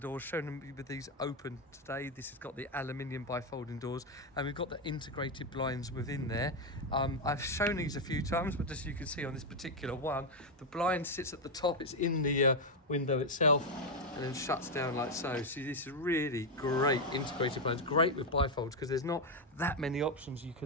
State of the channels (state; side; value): normal; both; correlation 0.05